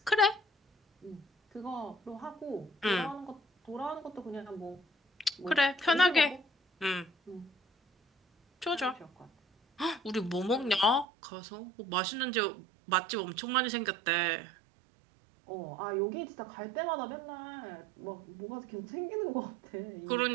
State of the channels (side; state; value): left; drops out; at 11.1 s